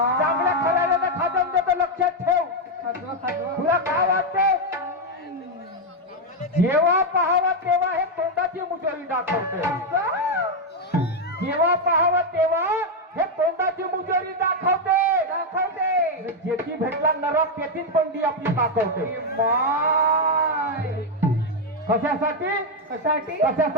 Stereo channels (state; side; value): normal; both; correlation 0.03